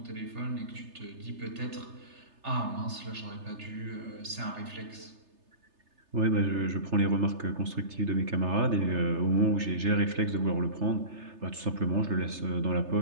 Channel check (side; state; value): left; late; 3.3 ms